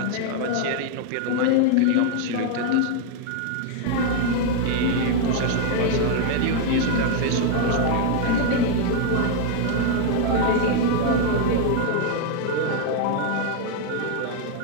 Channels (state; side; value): different; both; correlation 0.00